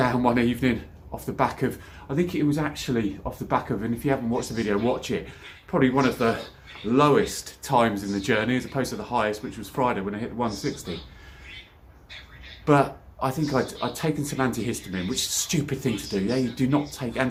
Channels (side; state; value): both; identical; correlation 1.00